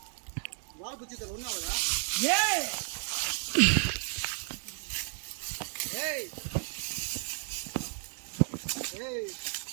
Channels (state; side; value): silent; left; 56 dB below the other